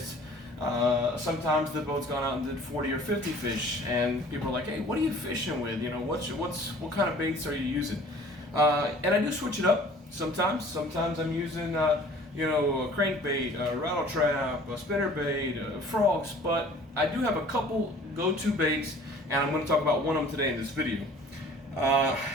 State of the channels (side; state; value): both; normal; correlation 0.50